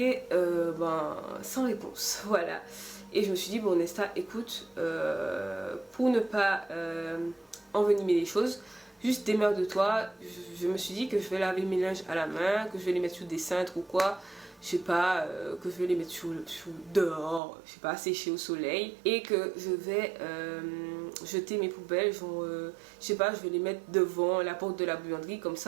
sans réponse, voilà. Et je me suis dit bon Nesta écoute, pour ne pas envenimer les choses, juste démerde-toi. Je me suis dit que je vais laver mes linges à la main, que je vais les mettre sous des cintres ou quoi. Je sais pas, que je vais les mettre dehors, je sais pas, sécher au soleil. Et que je vais jeter mes poubelles, genre, je sais pas, je vais les mettre devant la porte de la buanderie. Comme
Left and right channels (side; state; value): left; drops out; at 17.4 s